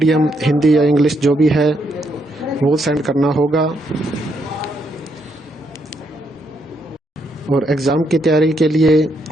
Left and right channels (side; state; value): both; normal; correlation 0.76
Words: हिंदी या इंग्लिश जो भी है वो सेंड करना होगा। और एग्ज़ाम की तैयारी के लिए